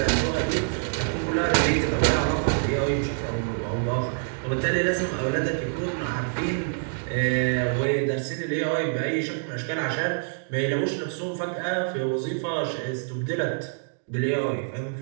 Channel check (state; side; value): silent; left; digital silence